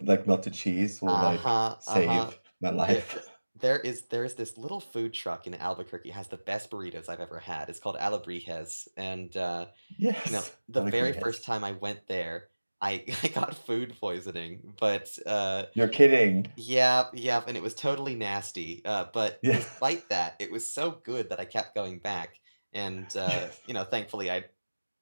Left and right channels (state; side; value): inverted; both; correlation -1.00